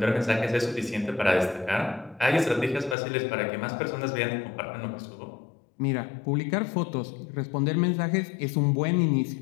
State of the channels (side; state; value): right; drops out; at 3.0 s